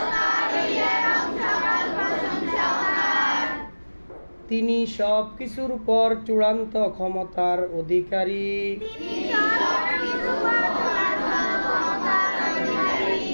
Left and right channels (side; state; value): both; inverted; correlation -1.00